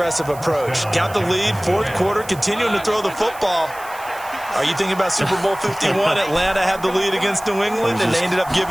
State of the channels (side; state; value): right; noise; hiss, 19 dB below the sound